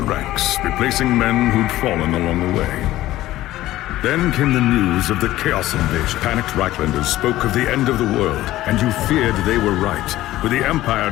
ranks, replacing men who'd fallen along the way. Then came the news of the Chaos invasion. Panicked Reichlanders spoke of the end of the world, and you feared they were right. With the Empire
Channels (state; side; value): quieter; right; 15.5 dB